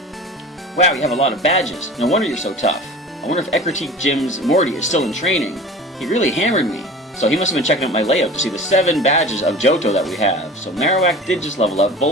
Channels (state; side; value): normal; both; correlation 0.38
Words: Wow, you have a lot of badges. No wonder you're so tough. I wonder if Ecruteak Gym's Morty is still in training. He really hammered me. So he must have been checking out my layout to see the 7 badges of Johto that we have. So Marowak did just level up.